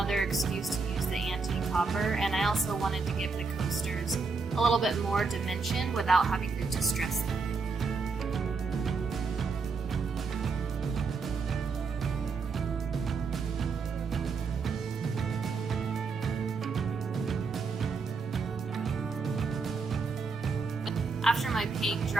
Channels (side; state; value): left; quieter; 4.6 dB